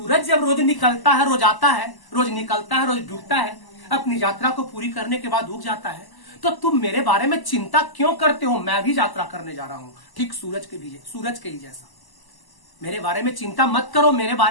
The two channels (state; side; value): late; right; 1.0 ms